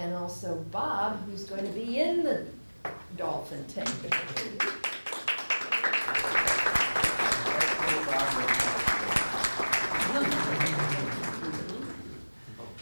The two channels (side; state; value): both; inverted; correlation -1.00